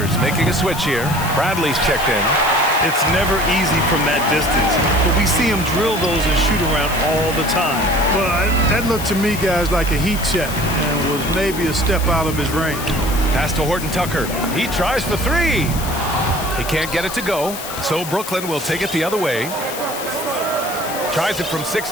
making a switch here. Bradley's checked in. It's never easy from that distance, but we see him drill those and shoot around all the time. Well, that looked to me, guys, like a heat check and was maybe a step out of his range. Pass to Horton Tucker. He tries for three. He can't get it to go, so Brooklyn will take it the other way. Tries it from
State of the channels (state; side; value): noise; left; hiss, 10 dB below the sound